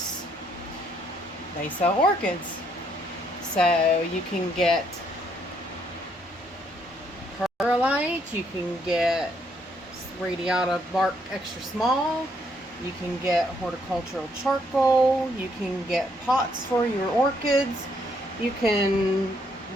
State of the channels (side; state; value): both; normal; correlation 0.71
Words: they sell orchids. So you can get perlite, you can get radiata bark extra small, you can get horticultural charcoal, you can get pots for your orchids, you can